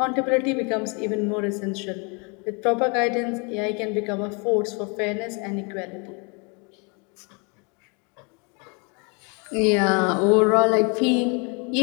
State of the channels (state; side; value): quieter; right; 33.4 dB